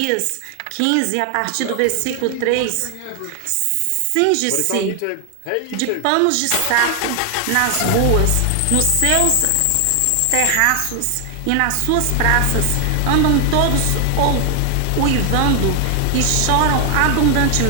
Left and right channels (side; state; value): both; different; correlation 0.00